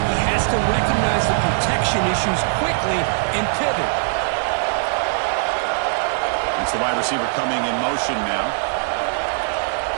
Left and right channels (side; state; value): left; silent; digital silence